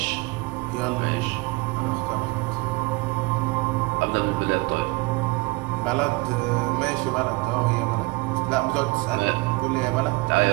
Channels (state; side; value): quieter; left; 25.7 dB